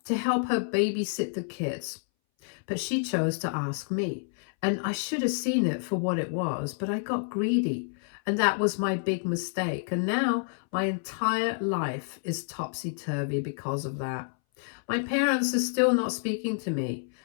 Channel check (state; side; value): silent; right; 59 dB below the other